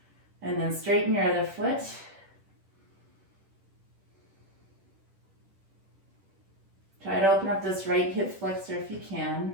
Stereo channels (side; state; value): left; late; 10 ms